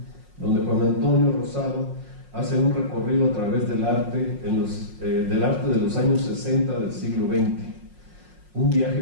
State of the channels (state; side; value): late; left; 5.5 ms